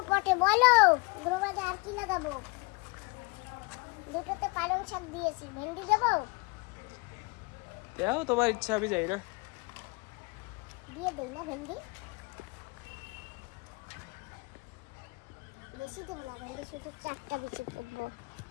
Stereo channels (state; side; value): quieter; right; 27.5 dB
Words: পটে বলো? গ্রো ব্যাগে আর কি লাগাবো? দুটোতে পালং শাক দিয়েছি, ভেন্ডি দেবো? দাও তোমার ইচ্ছা, আমি যাই না। দিয়ে দেই না ভেন্ডি? বেশি দেবো না ভেন্ডি, শুধু 4টা বিচি পুঁতবো।